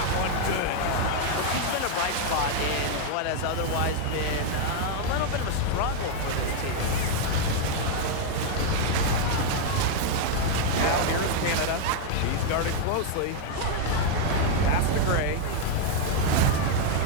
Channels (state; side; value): different; both; correlation 0.00